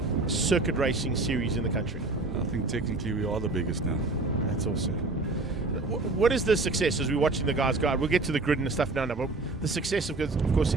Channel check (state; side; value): quieter; left; 3.3 dB